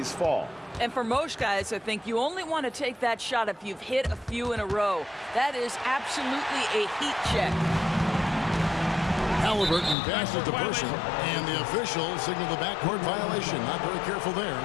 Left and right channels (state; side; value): drops out; right; at 10.0 s